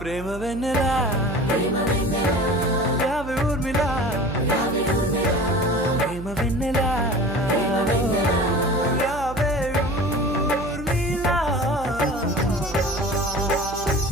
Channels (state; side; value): noise; right; hum, 12 dB below the sound